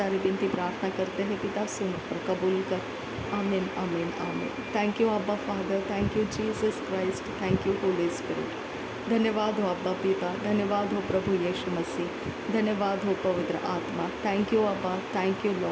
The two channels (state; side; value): identical; both; correlation 1.00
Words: विनती प्रार्थना करते हैं पिता, सुन और कबूल कर। आमीन आमीन आमीन। थैंक यू अब्बा father, thank you Jesus Christ, thank you Holi spirit. धन्यवाद हो अब्बा पिता, धन्यवाद हो प्रभु यीशु मसीह, धन्यवाद हो पवित्र आत्मा। थैंक यू अब्बा, thank you